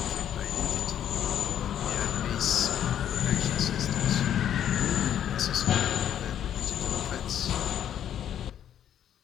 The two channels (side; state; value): right; quieter; 10.1 dB